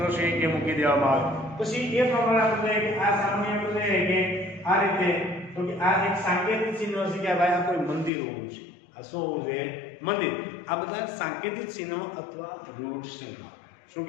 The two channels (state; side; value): drops out; right; at 8.1 s